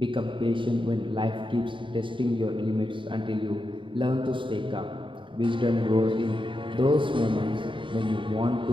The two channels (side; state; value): left; late; 0.24 ms